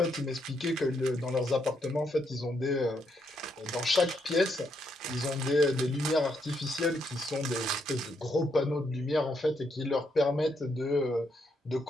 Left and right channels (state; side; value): normal; both; correlation 0.77